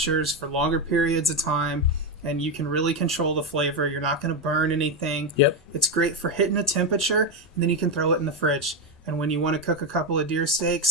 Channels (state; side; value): normal; both; correlation 0.10